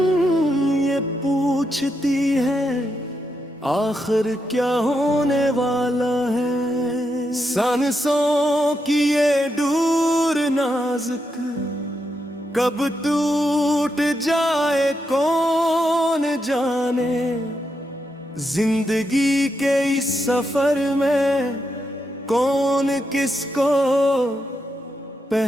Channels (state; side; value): normal; both; correlation 0.83